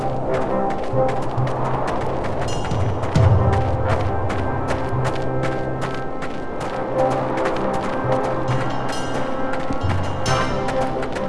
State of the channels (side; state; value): both; identical; correlation 1.00